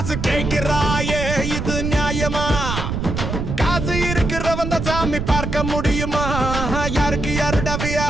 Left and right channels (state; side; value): noise; right; rumble, 3 dB below the sound